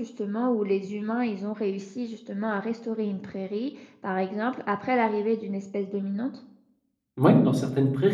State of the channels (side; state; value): both; identical; correlation 1.00